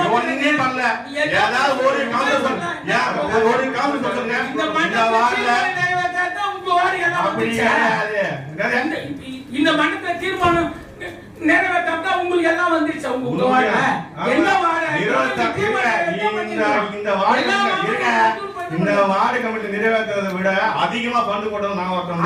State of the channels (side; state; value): both; identical; correlation 1.00